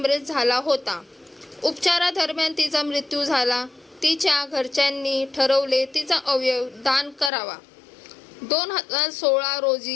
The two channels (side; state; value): right; drops out; at 7.3 s